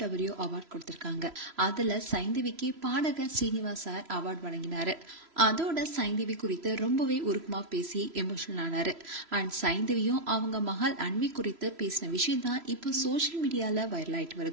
அவார்ட் கொடுத்திருக்காங்க. அதுல சைந்தவிக்கு பாடகர் ஸ்ரீனிவாஸ் சார் அவார்ட் வழங்கினாரு. அதோட சைந்தவி குறித்து ரொம்பவே உருக்கமா பேசி எமோஷனல் ஆனாரு. அண்ட் சைந்தவியும் அவங்க மகள் அன்வி குறித்து பேசின விஷயம் தான் இப்போ சோசியல் மீடியால வைரல் ஆயிட்டு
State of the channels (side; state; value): left; late; 3.0 ms